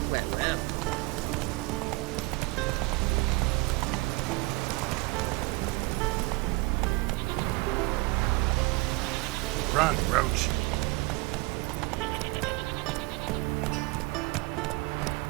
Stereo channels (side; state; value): left; quieter; 24.6 dB